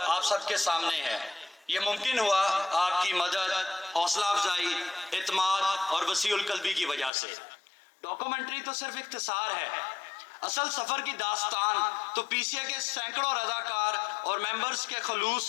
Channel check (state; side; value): drops out; right; at 7.1 s